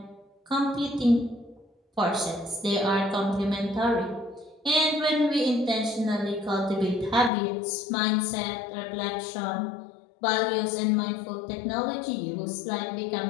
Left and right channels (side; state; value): right; drops out; at 7.3 s